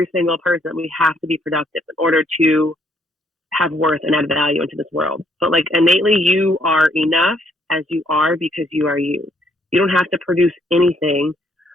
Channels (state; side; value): normal; both; correlation 0.69